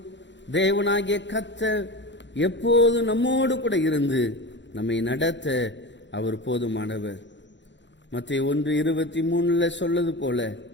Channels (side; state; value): right; late; 0.52 ms